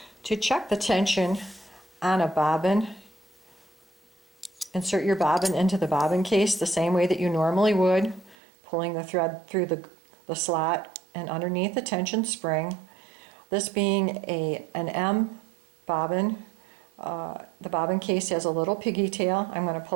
To check the tension on a bobbin, insert your bobbin into the bobbin case the same way that you normally would, pulling the thread through the slot and underneath the tension spring. This being an M bobbin, the bobbin case has a little piggy tail. I'm going to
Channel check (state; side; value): drops out; left; at 8.3 s